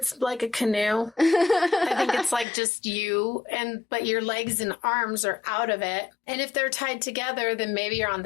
like a canoe. I think it's like just you, but your legs and arms are out of it. And if they're tied together, then maybe you're on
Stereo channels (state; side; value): drops out; right; at 2.5 s